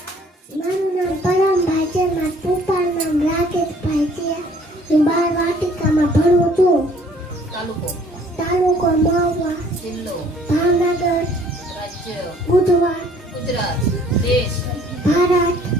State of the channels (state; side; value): normal; both; correlation 0.57